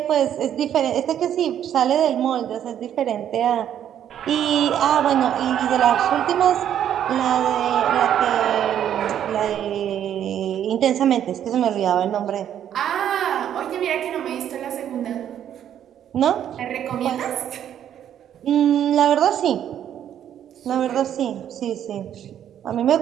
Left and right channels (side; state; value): left; quieter; 10.1 dB